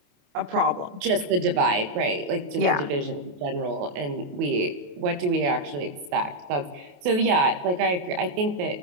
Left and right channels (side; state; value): left; late; 28 ms